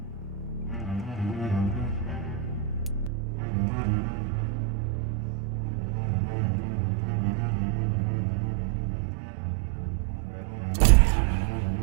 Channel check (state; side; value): drops out; left; at 3.1 s